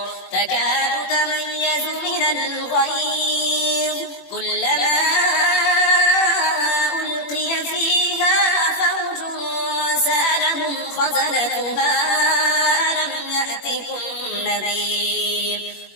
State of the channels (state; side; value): late; right; 21 ms